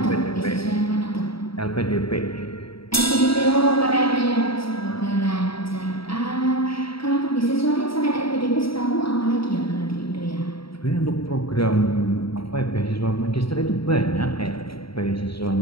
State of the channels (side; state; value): right; late; 0.75 ms